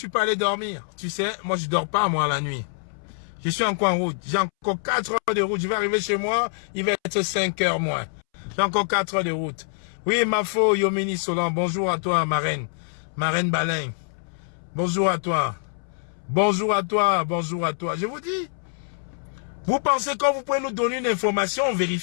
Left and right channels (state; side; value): silent; right; 62 dB below the other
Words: peux aller dormir. Tu sais, moi, je dors pas, moi, la nuit. Je suis encore en route. J'ai encore 4 heures de route. Je vais arriver chez moi. Il va être 5 heures moins. J'ai encore 4 heures de route. Oui, Mafo, Yomini Solan. Bonjour à toi, ma reine. Ma reine Balin. Bonjour à toi. Bonjour à toi. Bonjour à toi. Je vous dis, vous pensez quand vous pouvez nous donner une information, on